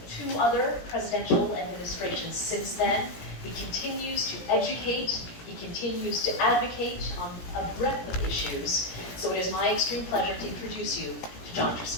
2 other presidential administrations since then. He continues to educate, he continues to advocate on a breadth of issues. So it is my extreme pleasure to introduce you to John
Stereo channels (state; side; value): late; right; 17 ms